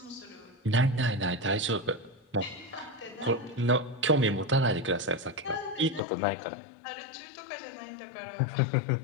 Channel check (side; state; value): right; drops out; at 6.0 s